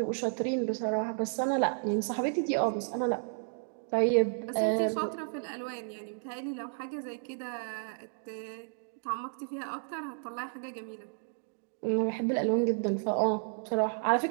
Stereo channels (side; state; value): left; silent; digital silence